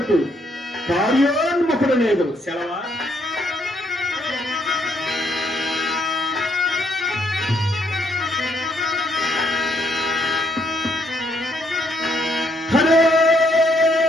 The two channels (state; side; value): normal; both; correlation 0.72